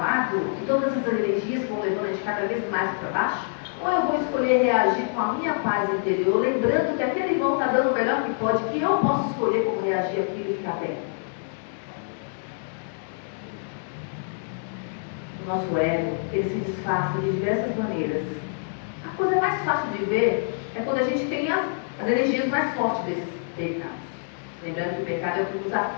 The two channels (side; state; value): right; silent; digital silence